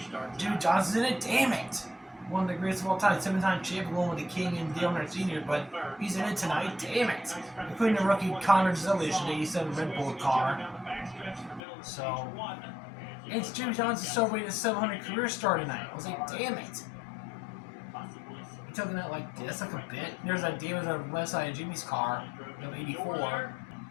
Jimmy Johnson's in it. Damn it. One of the greatest of all time, 7-time champion, going with the King and Dale Earnhardt Sr., but he's in it tonight. Damn it. Including the rookie Connor Zilish in the 87 Red Bull car. So, it's Jimmy Johnson celebrating his 700 career start tonight. I was like, damn it. He took it out like this, like a bit. There's that damage on the left side of Jimmy's car, of 84.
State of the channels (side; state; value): right; drops out; at 11.6 s